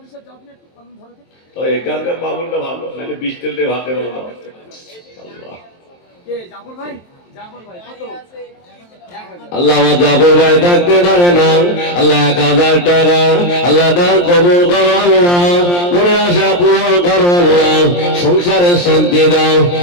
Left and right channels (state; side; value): late; right; 23 ms